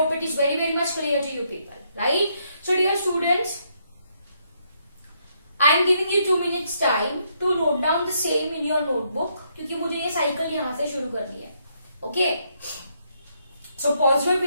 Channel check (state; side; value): inverted; both; correlation -0.74